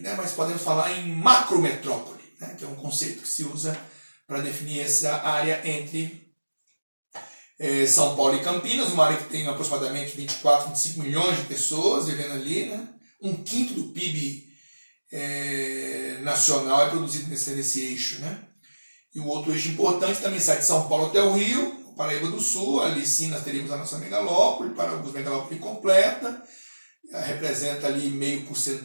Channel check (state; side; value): inverted; both; correlation -1.00